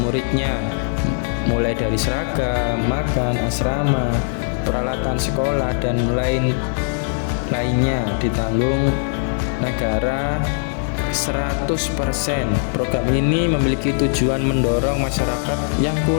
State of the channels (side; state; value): right; silent; 60 dB below the other